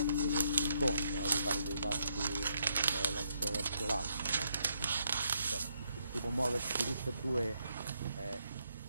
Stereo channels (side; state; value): both; inverted; correlation -0.76